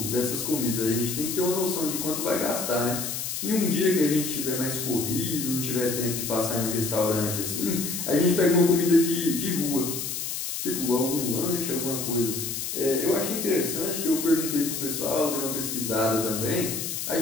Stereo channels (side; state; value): left; noise; hiss, 4 dB below the sound